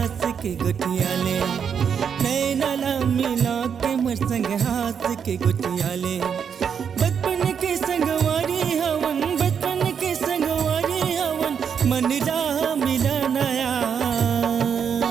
के गुटिया ले, नैनला मिला के मोर संग हाथ के गुटिया ले। बचपन के संगवारी हवन, बचपन के संगवारी हवन, मन राह मिला नया।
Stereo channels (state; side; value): quieter; left; 7.3 dB